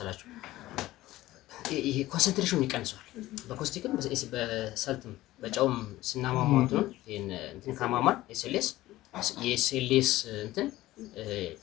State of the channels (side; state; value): right; quieter; 16.5 dB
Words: ይሄ ኮንሰንትሬሽኑ ይቀንሰዋል። በኮስቲክም በሰልትም በጨውም ስናማማው እንትን ካማማን የኤስኤልኤስ እንትን